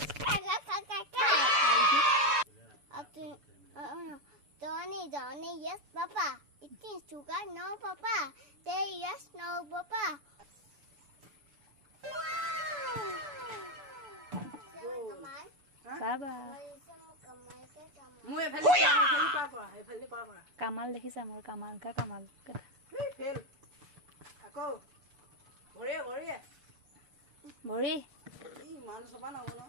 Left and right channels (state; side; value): late; left; 6.9 ms